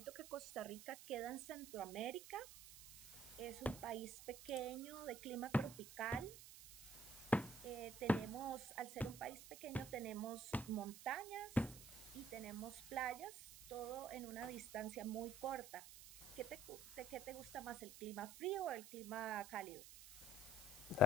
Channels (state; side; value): noise; right; hiss, 14 dB below the sound